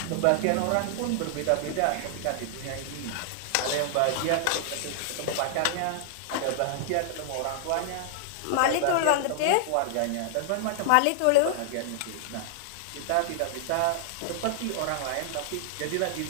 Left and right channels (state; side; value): different; both; correlation -0.01